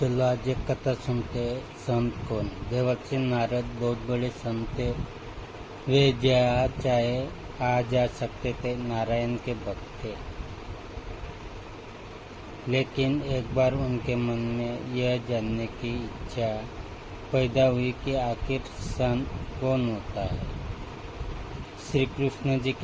आज एक कथा सुनते हैं। संत कौन? देवर्षि नारद बहुत बड़े संत थे। वे जहाँ चाहे आ जा सकते थे, नारायण के भक्त थे। लेकिन एक बार उनके मन में यह जानने की इच्छा पैदा हुई कि आखिर संत कौन होता है। श्री कृष्ण जी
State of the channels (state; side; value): identical; both; correlation 1.00